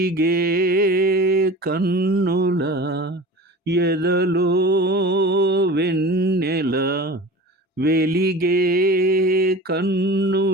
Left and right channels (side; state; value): both; normal; correlation 0.36